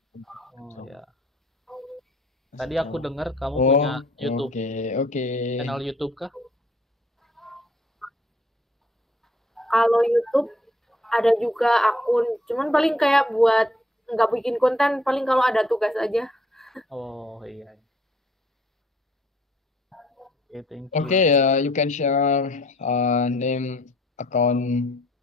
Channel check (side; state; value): both; normal; correlation 0.61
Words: ya. Tadi aku dengar kamu punya YouTube. Okay. Channel YouTube kah? Kalau YouTube ada juga akun, cuman paling kayak buat nggak bikin konten, paling kalau ada tugas aja. Oh iya. Okay, thank you. Okay, you can share name account